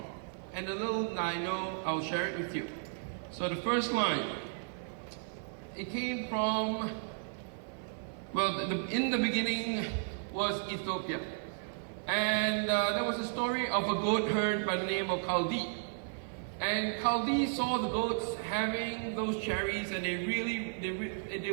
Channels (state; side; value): silent; left; 55 dB below the other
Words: And a little I know, I'll share it with you. So the first line, it came from, well, in the beginning was Ethiopia. And there was a story of a goat herd by the name of Kaldi. And Kaldi saw the goats having those cherries, and they